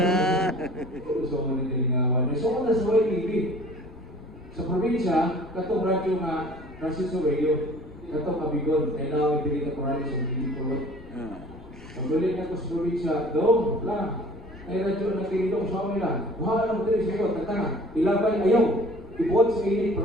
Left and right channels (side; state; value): left; noise; rumble, 19 dB below the sound